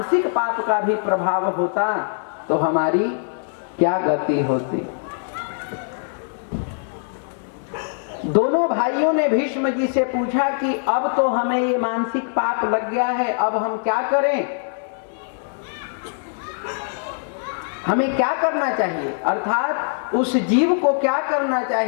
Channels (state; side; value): silent; right; digital silence